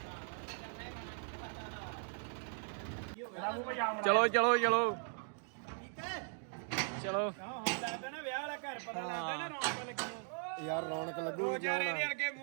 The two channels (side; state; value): left; silent; 52 dB below the other